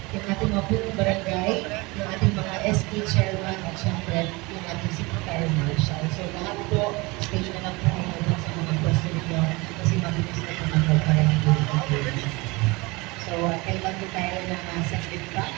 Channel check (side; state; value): left; quieter; 24.6 dB